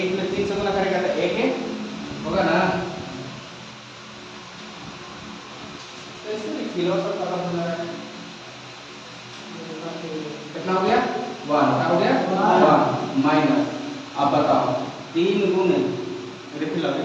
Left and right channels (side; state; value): both; identical; correlation 1.00